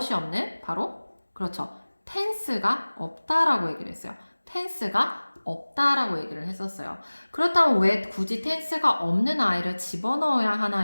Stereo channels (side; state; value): both; inverted; correlation -1.00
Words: 없는? 바로 그렇죠. tense가 없다라고 얘기를 했어요. tense가 없다라고 얘기를 했었어요. 그렇다면 왜 굳이 tense가 없는 아이를 집어넣어야